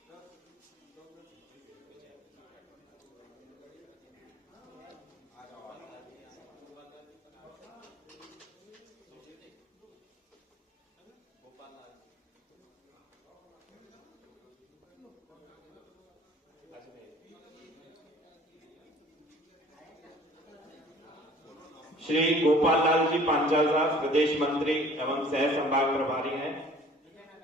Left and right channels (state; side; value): normal; both; correlation 0.51